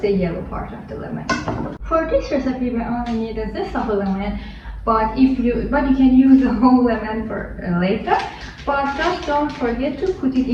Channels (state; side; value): identical; both; correlation 1.00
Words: the yellow part of the lemon. For this recipe we only need a zest of a lemon, but you can use the whole lemon for later. But just don't forget to put it